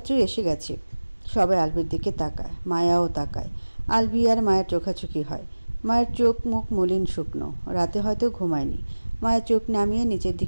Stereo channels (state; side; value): inverted; both; correlation -1.00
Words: এসে গেছে। সবাই আলভির দিকে তাকায়, মায়াও তাকায়। আলভি আর মায়ের চোখাচোখি হয়। মায়ের চোখ মুখ মলিন শুকনো, রাতে হয়তো ঘুমায়নি। মায়ের চোখ নামিয়ে নিচের